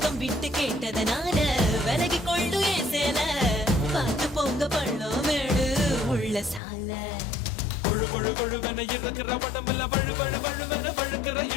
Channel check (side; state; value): right; drops out; at 6.6 s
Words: விட்டு கேட்டதனால விலகி கொள்ளு ஏன் சேல பார்த்து போங்க பள்ளம் மேடு உள்ள சால கொழு கொழு கொழுவென இருக்கிற உடம்புல வழு வழு வழுவென வழுக்கிற